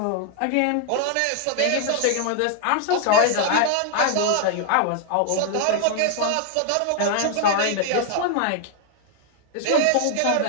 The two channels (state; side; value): different; both; correlation 0.00